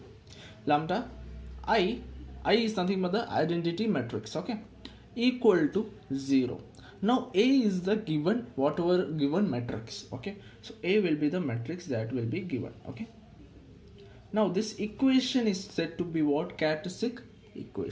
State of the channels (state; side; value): identical; both; correlation 1.00